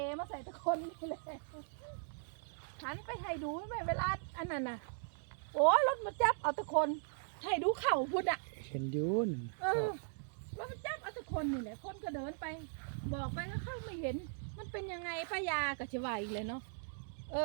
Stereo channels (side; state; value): left; silent; digital silence